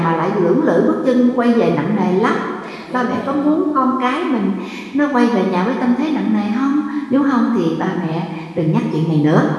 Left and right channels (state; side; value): identical; both; correlation 1.00